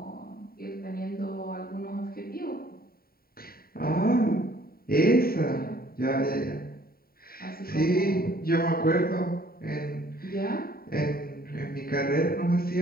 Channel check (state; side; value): late; right; 0.43 ms